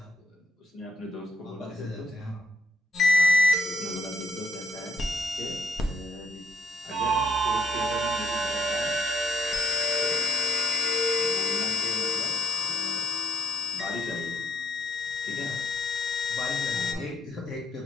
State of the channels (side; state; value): both; normal; correlation 0.70